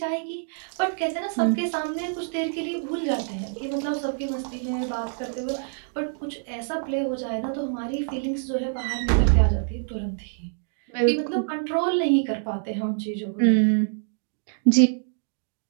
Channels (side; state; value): left; silent; digital silence